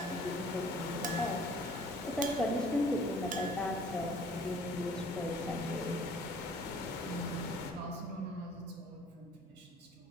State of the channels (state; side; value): normal; both; correlation 0.54